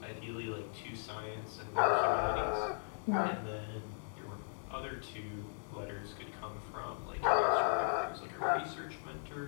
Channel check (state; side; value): silent; right; digital silence